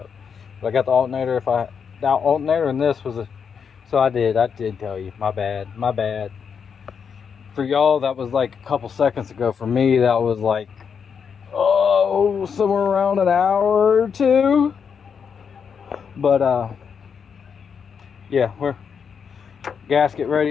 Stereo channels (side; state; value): right; quieter; 6.7 dB